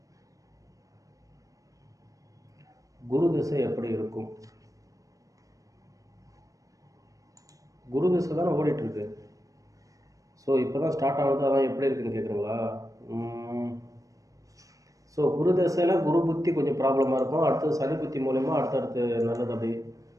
குரு திசை எப்படி இருக்கும்? குரு திசை தானே ஓடிட்டுருக்கு. ஸோ இப்போ தான் ஸ்டார்ட் ஆகுது, அதான் எப்படி இருக்குன்னு கேட்குறீங்களா? ஸோ குரு திசையில் குரு புத்தி கொஞ்சம் ப்ராப்ளமாக இருக்கும். அடுத்தது சனி புத்தி மூலயமா அடுத்தடுத்து நல்லது. அப்படி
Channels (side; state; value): left; late; 0.16 ms